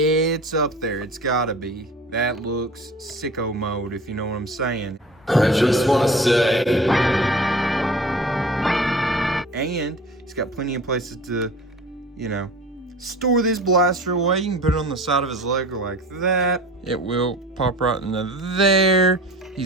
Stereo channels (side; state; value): both; normal; correlation 0.40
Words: it's up there. It's gotta be. That looks sicko mode, if you know what I'm saying. I just want to say... And he's got plenty of places to, you know, store this blaster away. You can put it on the side of his leg like that. It will pop right into there.